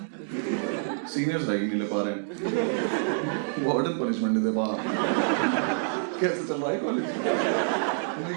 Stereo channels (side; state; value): left; silent; digital silence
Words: सीनियर्स रैगिंग नहीं ले पा रहे हैं, वार्डन पनिशमेंट नहीं दे पा रहा, कैसे चल रहा है कॉलेज?